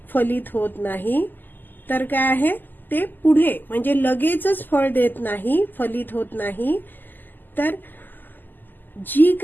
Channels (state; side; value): late; right; 0.089 ms